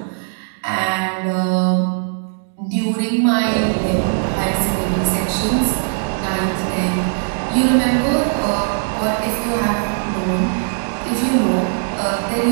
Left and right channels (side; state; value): left; silent; digital silence